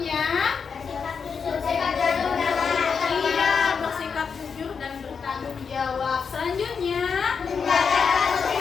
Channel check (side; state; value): right; quieter; 6.0 dB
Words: bersikap jujur dan bertanggung jawab. Selanjutnya,